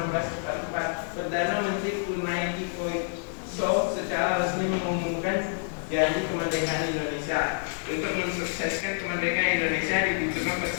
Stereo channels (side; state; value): right; silent; 59 dB below the other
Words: Perdana Menteri Kunai Koiso secara resmi mengumumkan janji kemerdekaan Indonesia. Untuk mensukseskan kemerdekaan Indonesia dibutuhkan